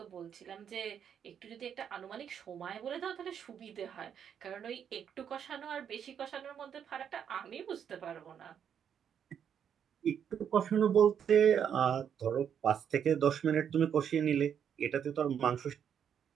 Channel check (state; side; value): quieter; left; 8.3 dB